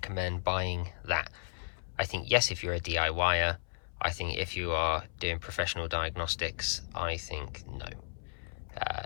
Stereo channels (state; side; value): silent; right; 55 dB below the other